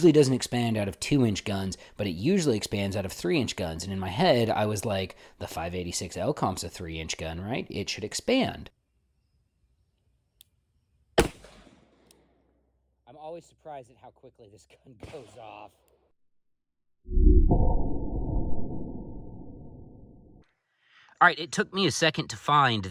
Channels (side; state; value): both; identical; correlation 1.00